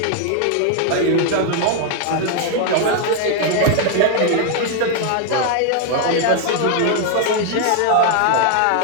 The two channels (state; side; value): different; both; correlation 0.00